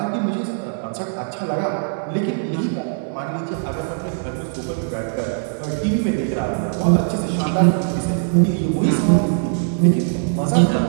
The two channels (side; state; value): left; silent; 60 dB below the other